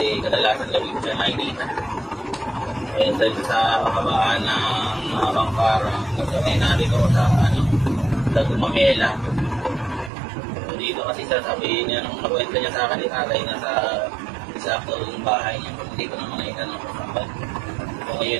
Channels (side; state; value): left; drops out; at 10.1 s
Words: kadalasan gabi ko siya nakikita dahil sa kabaan ng Bangkara kasi narito sa sa Gumamela so, dito kasi sasabihin niya nung nakwenta niya sa akin ni tatay na sa saktong bahay niya hindi ko naman nakita ng kasabat so